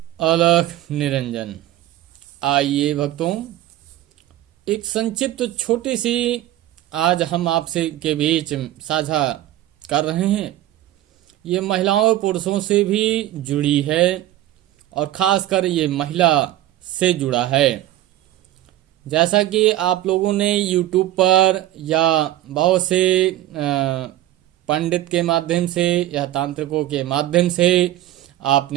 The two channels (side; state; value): left; quieter; 14.2 dB